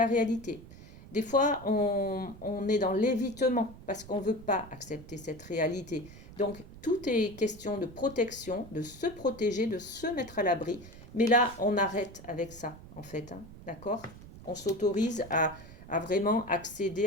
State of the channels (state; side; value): noise; right; rumble, 17 dB below the sound